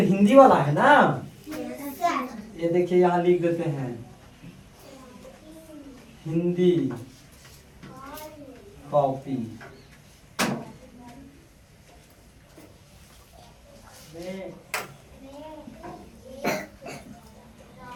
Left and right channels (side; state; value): both; identical; correlation 1.00